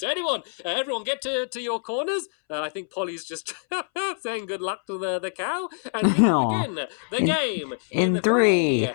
everyone get to your corners. I think Polly's just saying good luck to the cow. And we will begin the game in 3,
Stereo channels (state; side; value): silent; right; 62 dB below the other